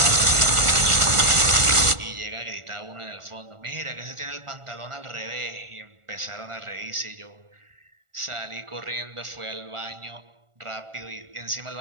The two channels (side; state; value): left; late; 1.4 ms